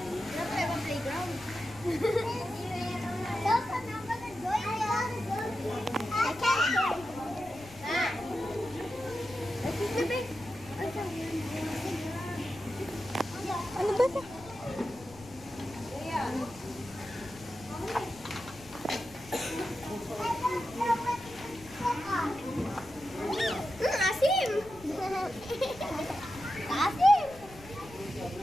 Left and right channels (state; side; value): noise; left; rumble, 20 dB below the sound